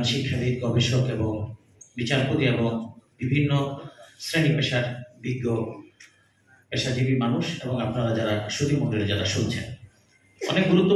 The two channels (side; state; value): both; identical; correlation 1.00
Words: শিক্ষাবিদ, গবেষক এবং বিচারপতি এবং বিভিন্ন শ্রেণী পেশার বিজ্ঞ পেশাজীবী মানুষ এবং আপনারা যারা সুধী মণ্ডলী যারা শুনছেন। অনেক